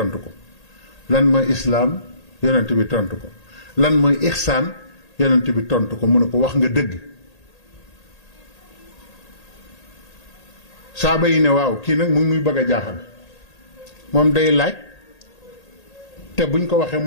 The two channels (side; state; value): right; late; 1.8 ms